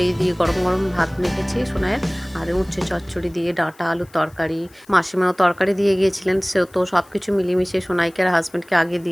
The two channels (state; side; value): noise; left; hiss, 28 dB below the sound